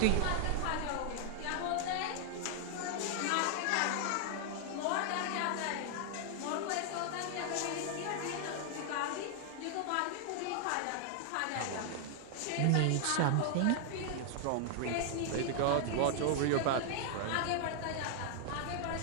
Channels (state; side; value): different; both; correlation 0.00